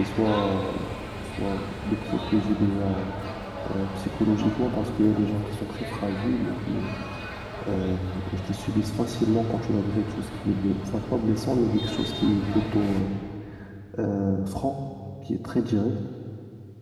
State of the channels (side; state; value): both; identical; correlation 1.00